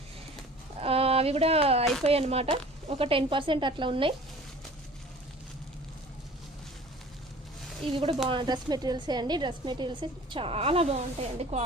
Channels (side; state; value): both; normal; correlation 0.46